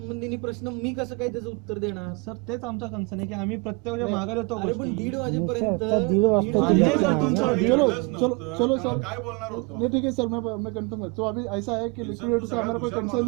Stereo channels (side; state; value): left; quieter; 29.8 dB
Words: प्रश्न मी कसं काय त्याचं उत्तर देणार? सर तेच आमचा कन्सर्न आहे की आम्ही प्रत्येक मागे येतो अरे पण गोष्टी 1:30 वाजेपर्यंत नहीं सर तुमचा चलो सर काय बोलणार होतो? नहीं ठीक है सर मैं कंफर्म तो अभी ऐसा है कि लिक्विडेटर से हमारा कोई कंसर्न